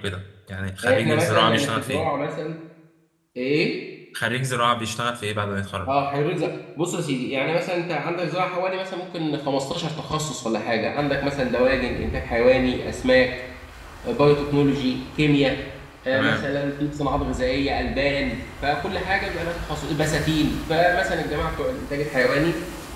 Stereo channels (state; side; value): identical; both; correlation 1.00